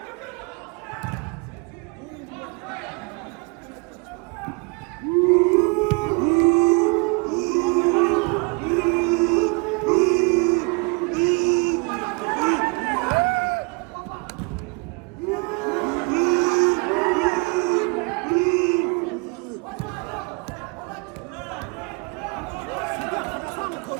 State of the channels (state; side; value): quieter; left; 31.0 dB